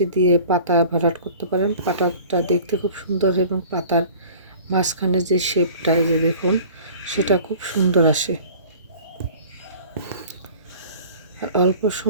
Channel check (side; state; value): both; inverted; correlation -0.45